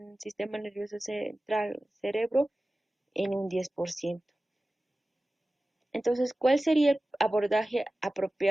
sistema nervioso central, cerebro, en un 10%. Entonces, ¿cuál sería el abordaje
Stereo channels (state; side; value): normal; both; correlation 0.96